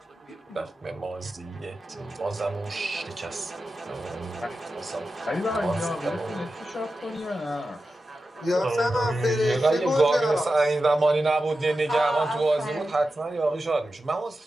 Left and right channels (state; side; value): normal; both; correlation 0.92